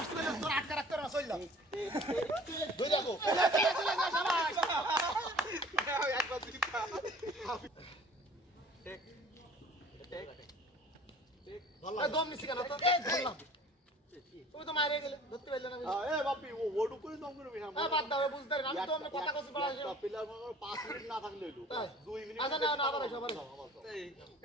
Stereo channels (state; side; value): normal; both; correlation 0.48